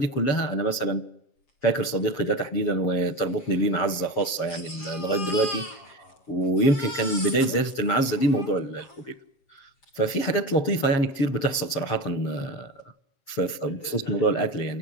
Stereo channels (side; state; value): right; late; 7.4 ms